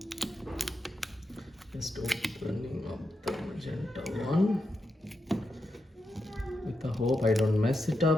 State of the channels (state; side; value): normal; both; correlation 0.86